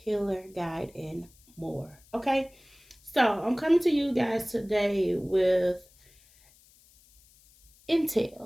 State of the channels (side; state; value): left; noise; hiss, 29 dB below the sound